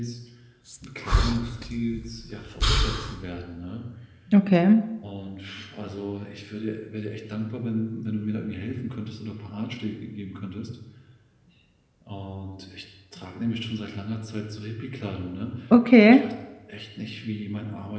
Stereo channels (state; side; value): identical; both; correlation 1.00